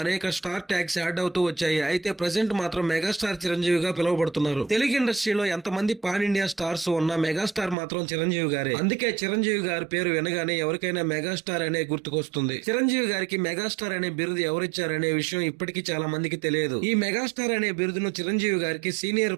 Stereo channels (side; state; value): left; drops out; at 7.8 s